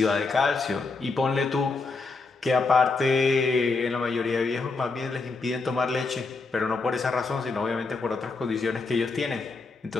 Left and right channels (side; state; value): right; quieter; 4.0 dB